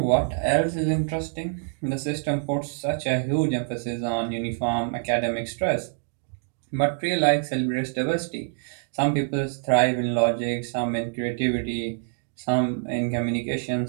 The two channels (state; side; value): silent; left; digital silence